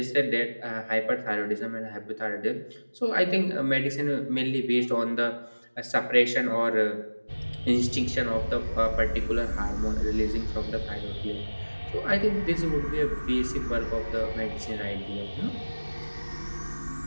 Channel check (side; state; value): both; inverted; correlation -1.00